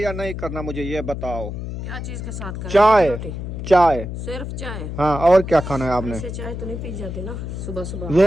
या नहीं करना, मुझे ये बताओ। क्या चीज के साथ करें? चाय। रोटी? चाय, सिर्फ चाय? हाँ, और क्या खाना है आपने? ऐसे चाय तो नहीं पी जाती ना सुबह सुबह।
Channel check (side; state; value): left; noise; hum, 6 dB below the sound